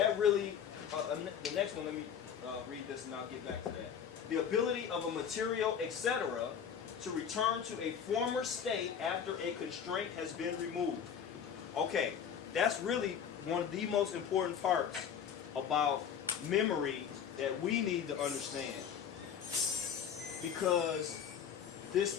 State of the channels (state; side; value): quieter; right; 8.0 dB